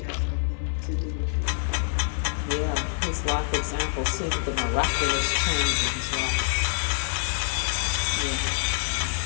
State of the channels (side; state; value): right; silent; digital silence